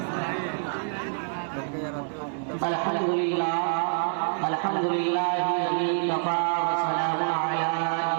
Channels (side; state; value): left; silent; digital silence